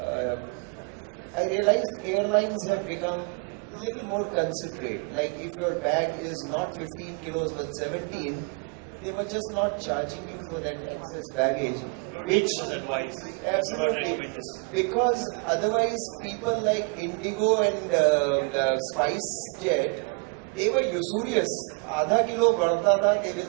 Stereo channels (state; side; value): quieter; left; 35.5 dB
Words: I realized airlines have become a little more considerate. Like if your bag is not 15 kilos but 17, they were just not charging you for that excess baggage. Don't Which take this as advice. We do not absolutely, recommend this. because otherwise people like Indigo and Spice Jet, they were usurious. Adha kilo badta tha, they will